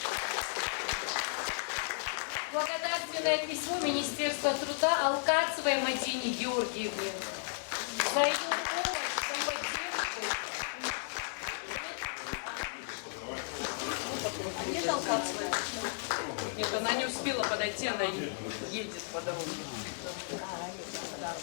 благодарственное письмо Министерства труда Алкацевой Мадине Георгиевне за ее помощь, за поддержку. Нет, Алкацевая? Нет, она не успела подойти, она едет по дороге.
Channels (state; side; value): silent; right; digital silence